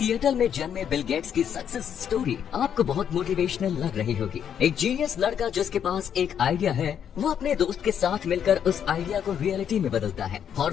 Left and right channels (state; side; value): quieter; right; 8.7 dB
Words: में जन्मे बिल गेट्स की सक्सेस स्टोरी आपको बहुत मोटिवेशनल लग रही होगी। एक जीनियस लड़का जिसके पास एक आइडिया है, वो अपने दोस्त के साथ मिलकर उस आइडिया को रियलिटी में बदलता है।